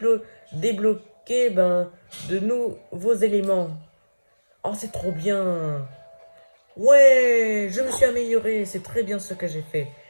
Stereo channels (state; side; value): inverted; both; correlation -1.00